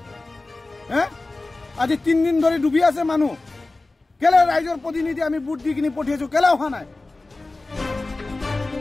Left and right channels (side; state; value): right; quieter; 3.2 dB